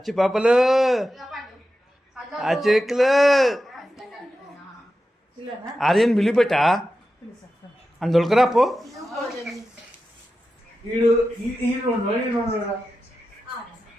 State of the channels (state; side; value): normal; both; correlation 0.92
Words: పాపలు అచ్చెక్కులు ఆర్యన్ బిలిపెట్టా అని దొరకరా పో ఈడు